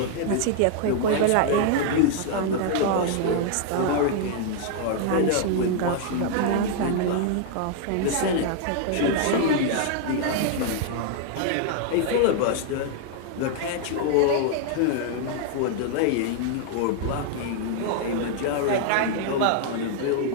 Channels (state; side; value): different; both; correlation 0.00